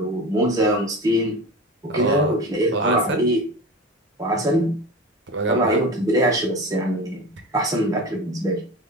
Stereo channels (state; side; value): normal; both; correlation 0.29